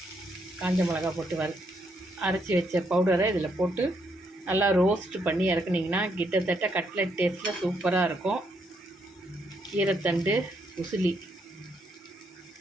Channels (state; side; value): normal; both; correlation 0.75